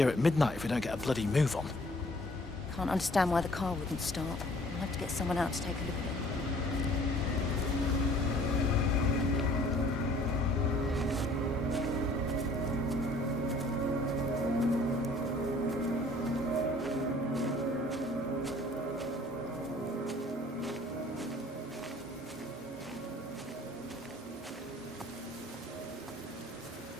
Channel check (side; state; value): both; normal; correlation 0.55